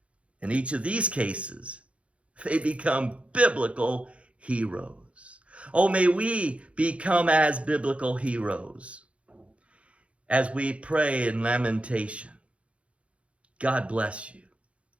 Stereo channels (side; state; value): left; late; 0.062 ms